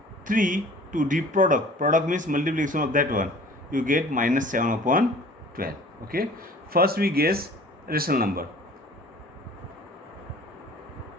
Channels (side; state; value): both; normal; correlation 0.48